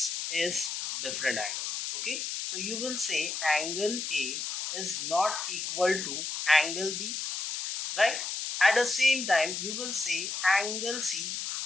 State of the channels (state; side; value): noise; left; hiss, 3 dB below the sound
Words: is different angle. Okay, so you will say angle A is not equal to angle B, right? At the same time you will say angle C